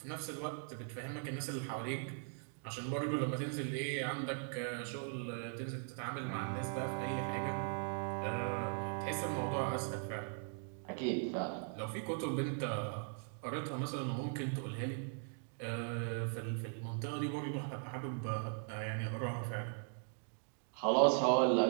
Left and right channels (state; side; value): silent; left; 51 dB below the other